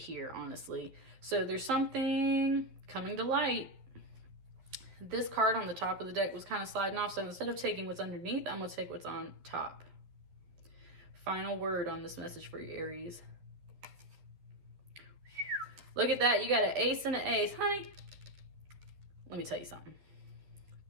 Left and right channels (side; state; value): left; late; 11 ms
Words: honestly. So there's something coming to light. This card on the top of the deck was kind of sliding off. So instead of taking what's underneath, I'm going to take what's on top. Final word on this message for you, Aries. Look at that. You got an ace and an ace. Honey, let me tell you something.